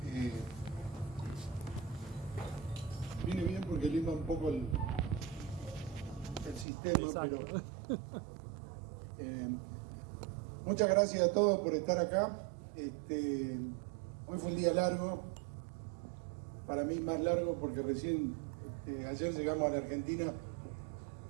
viene bien porque limpa un poco el sistema. Exacto. Pero muchas gracias a todos por estar acá. Hoy fue un día largo, para mí más largo porque recién ayer llegamos a la Argentina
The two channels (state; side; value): drops out; left; at 6.7 s